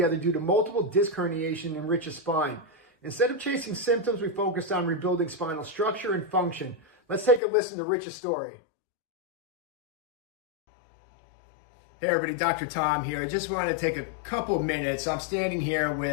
due to multiple disc herniation in Rich's spine. Instead of chasing symptoms, we focused on rebuilding spinal structure and function. Let's take a listen to Rich's story. Hey everybody, Dr. Tom here. I just want to take a couple minutes. I'm standing here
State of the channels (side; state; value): right; drops out; at 7.4 s